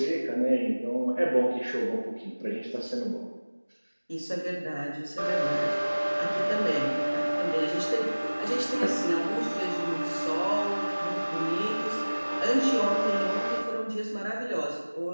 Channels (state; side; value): inverted; both; correlation -1.00